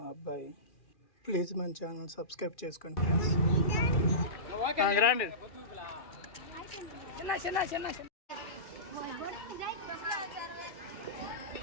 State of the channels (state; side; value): late; right; 2.4 ms